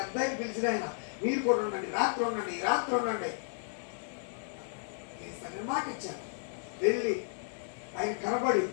ఆయన పిలిచిన ఆయన మీరు కూడా ఉండండి, రాత్రి ఉండండి, రాత్రి ఉండండి. నేను మాట ఇచ్చాను. వెళ్ళి ఆయన కనబడి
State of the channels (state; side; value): silent; right; digital silence